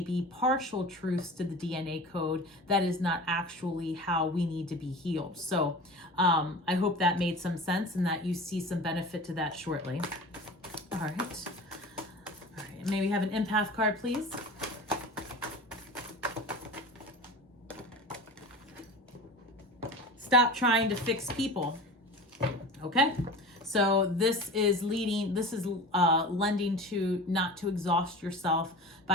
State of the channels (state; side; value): normal; both; correlation 0.34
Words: partial truths to the DNA code, that is not actually how we need to be healed. So I hope that made some sense and that you see some benefit to that shortly. All right. May we have an empath card, please? Stop trying to fix people. Okay, so this is lending to not to exhaust yourself